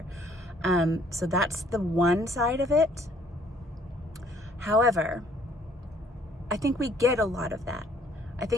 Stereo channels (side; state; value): both; normal; correlation 0.61